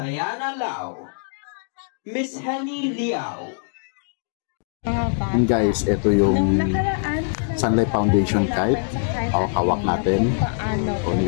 Lau, Miss Henny Liao. And guys, ito yung Sunlight Foundation kite. hawak natin. O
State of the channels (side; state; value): right; silent; digital silence